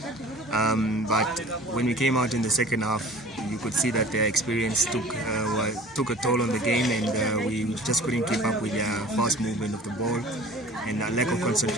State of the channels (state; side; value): normal; both; correlation 0.45